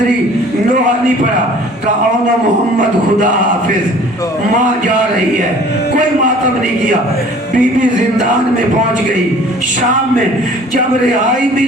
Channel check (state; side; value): normal; both; correlation 0.50